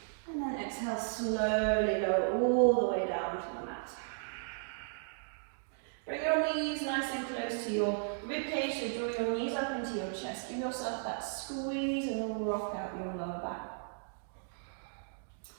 And then exhale, slowly go all the way down to the mat. Bring your knees nice and close to your ribcage, so draw your knees up into your chest. Give yourself that squeeze and then rock out your lower back.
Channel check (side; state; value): left; silent; digital silence